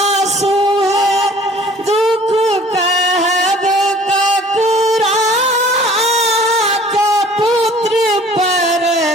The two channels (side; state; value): both; normal; correlation 0.51